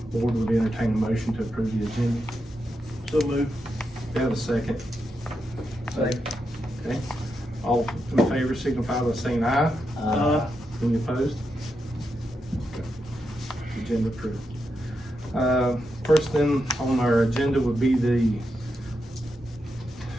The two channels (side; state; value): both; normal; correlation 0.85